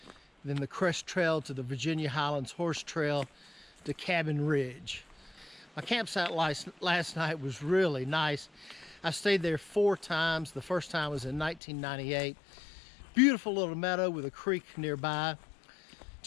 then the Crest Trail to the Virginia Highlands Horse Trail to Kabel Ridge. My campsite last night was really nice. I stayed there 4 times. The first time was in 1998. Beautiful little meadow with a creek nearby.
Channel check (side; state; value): right; drops out; at 11.6 s